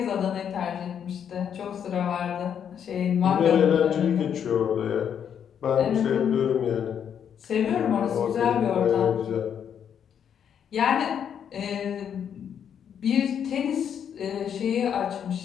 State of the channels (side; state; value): right; quieter; 8.4 dB